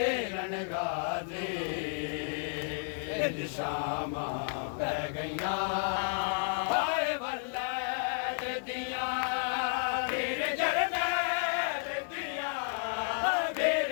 गाजी इन शामा पै गईया हाय वल्लैद दिया वीर जरनैल दिया वीर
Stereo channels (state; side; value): silent; right; digital silence